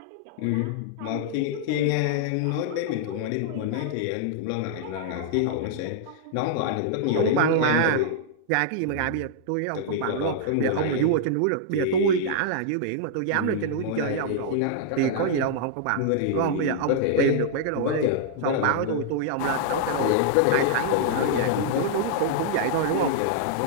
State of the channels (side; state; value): both; different; correlation -0.01